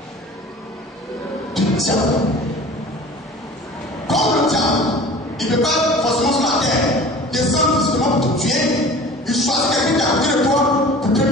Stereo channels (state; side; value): normal; both; correlation 0.42